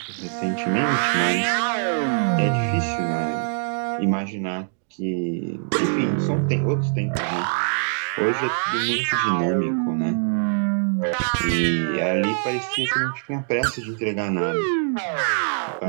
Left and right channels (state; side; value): silent; left; digital silence